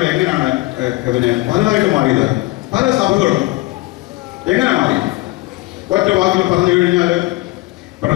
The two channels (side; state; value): right; quieter; 20.7 dB